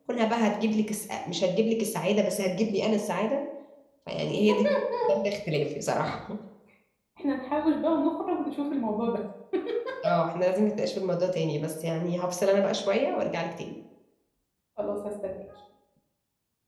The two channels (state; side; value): identical; both; correlation 1.00